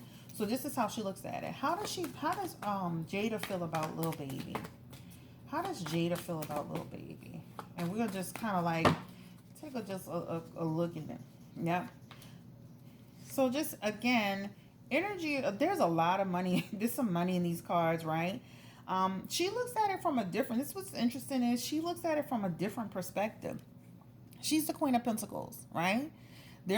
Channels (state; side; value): identical; both; correlation 1.00